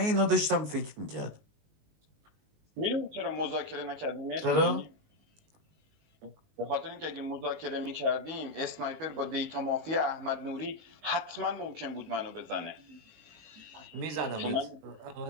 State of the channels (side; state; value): left; late; 19 ms